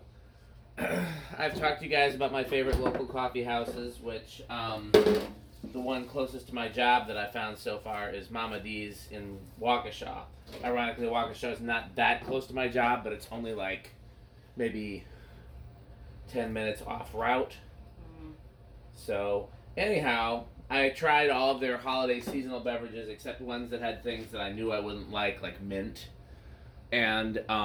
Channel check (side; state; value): both; identical; correlation 1.00